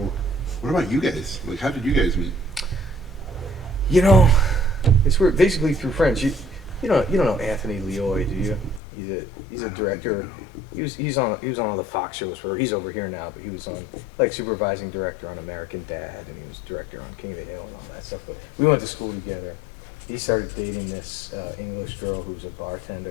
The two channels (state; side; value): drops out; right; at 8.8 s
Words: What about you guys? Like, how did you guys meet? It's weird. Basically through friends. You don't know Anthony Leoy, do you? He's a director. He was on all the Fox shows. He's over here now, but he was on supervising director on American Dad, and he was director on King of the Hill and all that stuff. But we went to school together. He started dating this English girl who's a